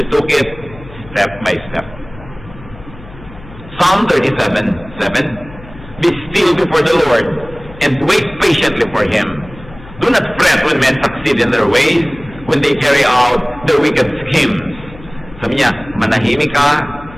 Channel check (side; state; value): left; noise; hum, 18 dB below the sound